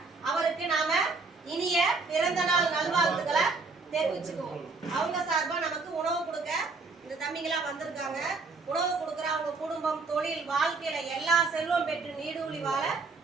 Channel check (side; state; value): left; quieter; 4.1 dB